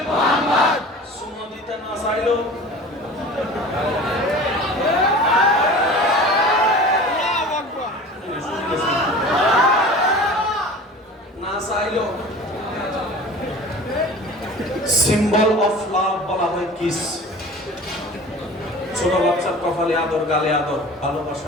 সুন্নাহ দিতে না চাইলো না চাইলো সিম্বল অফ লাভ বলা হয় কিস। ছোট বাচ্চার কপালে আদর, গালে আদর,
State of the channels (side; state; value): both; normal; correlation 0.39